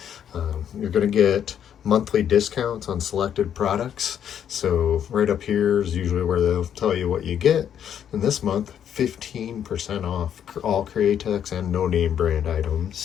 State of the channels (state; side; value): quieter; right; 9.2 dB